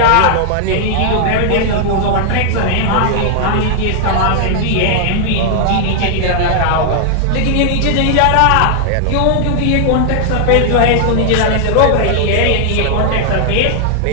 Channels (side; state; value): both; different; correlation 0.00